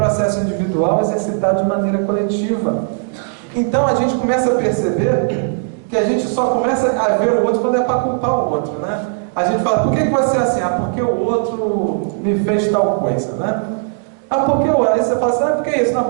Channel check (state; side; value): silent; left; digital silence